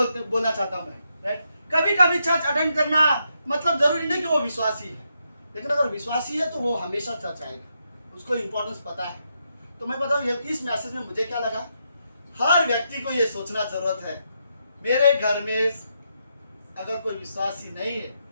चाहता हूं मैं, राइट? कभी कभी चर्च अटेंड करना मतलब जरूरी नहीं कि वो विश्वासी है, लेकिन अगर विश्वासी है तो वो हमेशा चर्च आएगा, उसको इंपॉर्टेंस पता है। तो मैं बताऊं, इस मैसेज में मुझे क्या लगा, हर व्यक्ति को ये सोचना जरूरत है, मेरे घर में अगर कोई विश्वासी नहीं है,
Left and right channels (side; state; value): both; inverted; correlation -0.81